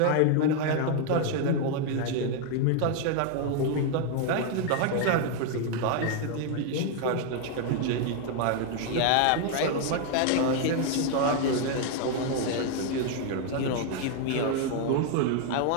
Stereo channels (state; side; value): different; both; correlation 0.00